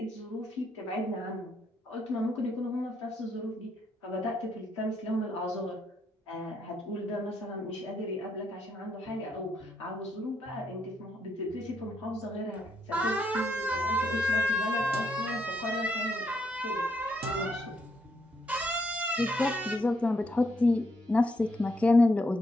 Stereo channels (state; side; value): normal; both; correlation 0.76